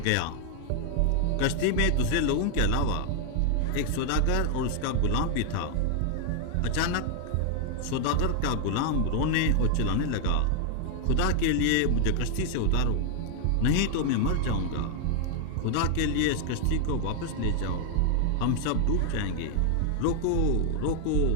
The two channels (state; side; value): different; both; correlation 0.00